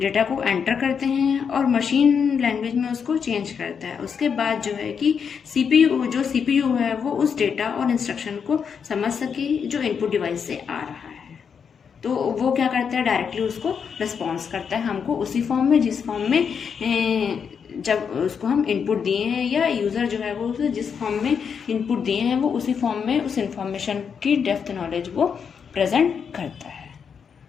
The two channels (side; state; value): right; quieter; 6.7 dB